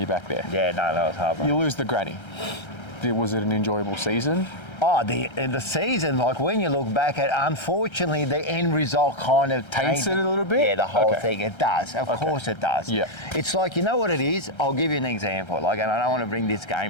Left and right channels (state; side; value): late; right; 1.3 ms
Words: back there. Yeah, no, that was heartbreaking. You lose the granny. Was it an enjoyable season? Oh, the season, like when you look back at, unfortunately, the end result kind of taints it a little bit? Yeah, the whole thing. It does. Of course it does. Yeah. It's like, you know what it is? I'll give you an example. Like, and I don't want to bring this